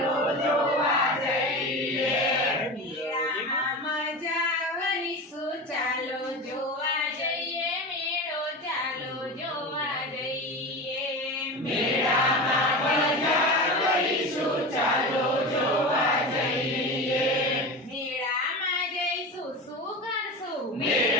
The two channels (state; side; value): normal; both; correlation 0.27